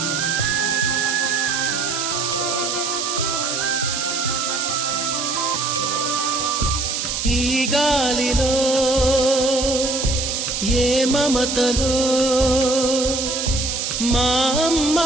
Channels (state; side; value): noise; right; hiss, 2 dB below the sound